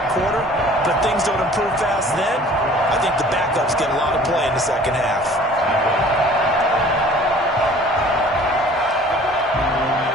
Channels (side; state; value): both; normal; correlation 0.50